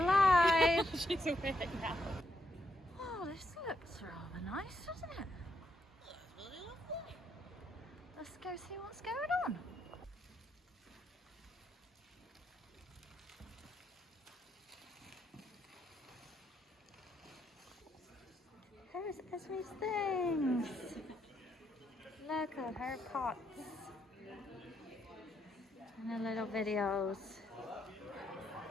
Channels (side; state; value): both; normal; correlation 0.77